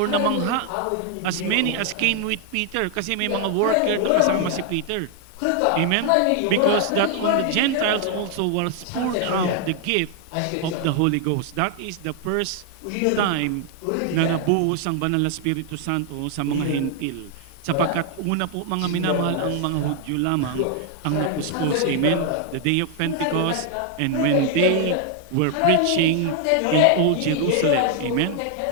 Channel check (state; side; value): different; both; correlation 0.00